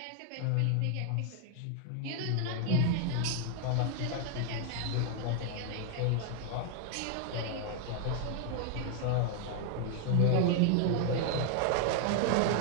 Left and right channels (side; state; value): both; different; correlation 0.00